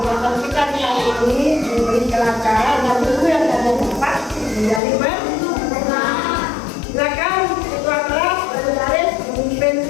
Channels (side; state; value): right; drops out; at 4.8 s